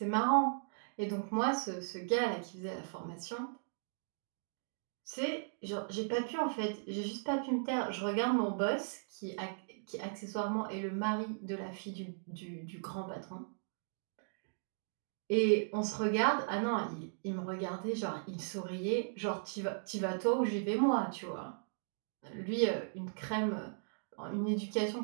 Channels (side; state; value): left; silent; digital silence